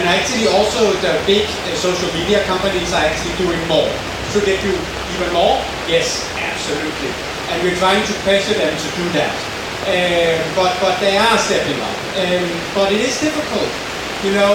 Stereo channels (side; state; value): both; identical; correlation 1.00